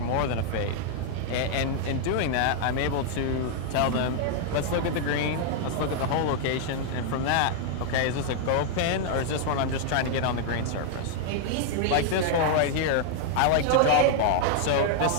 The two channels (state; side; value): different; both; correlation 0.00